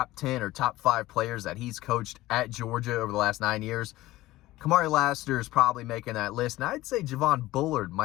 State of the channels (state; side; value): quieter; right; 17.2 dB